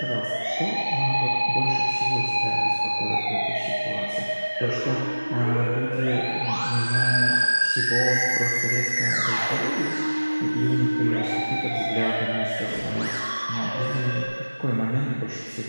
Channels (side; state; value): both; inverted; correlation -1.00